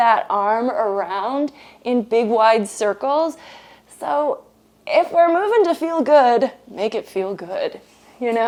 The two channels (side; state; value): both; identical; correlation 1.00